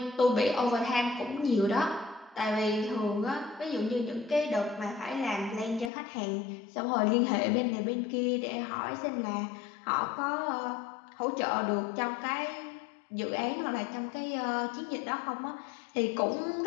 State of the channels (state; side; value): drops out; right; at 5.9 s